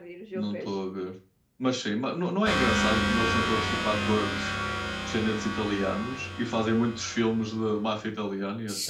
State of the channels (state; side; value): identical; both; correlation 1.00